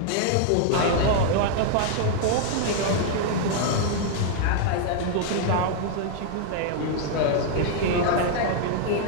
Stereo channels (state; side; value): different; both; correlation 0.00